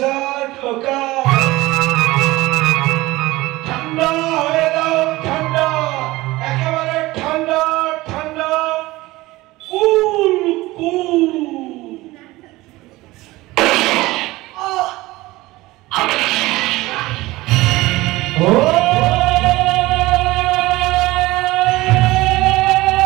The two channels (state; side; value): quieter; left; 19.4 dB